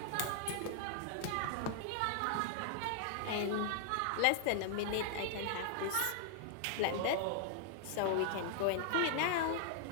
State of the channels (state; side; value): different; both; correlation 0.00